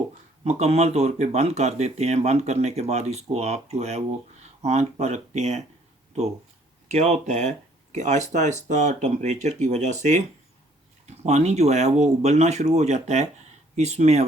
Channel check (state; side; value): normal; both; correlation 0.61